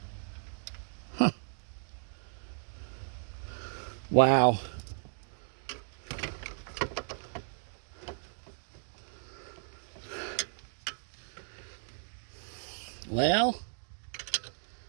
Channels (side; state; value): left; silent; digital silence